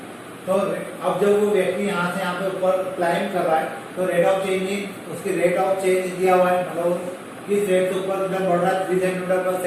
तो अब जब वो व्यक्ति यहाँ से यहाँ पे ऊपर क्लाइंब कर रहा है तो रेट ऑफ चेंज, उसकी रेट ऑफ चेंज दिया हुआ है, मतलब किस रेट से ऊपर बढ़ रहा है 3 सेंटीमीटर पर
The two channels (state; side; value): identical; both; correlation 1.00